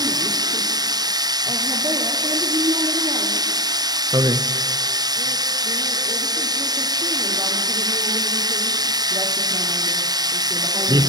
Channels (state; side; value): late; left; 0.19 ms